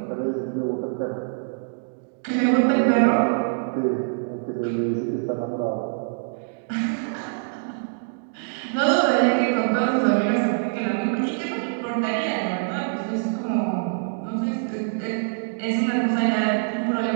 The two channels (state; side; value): silent; left; digital silence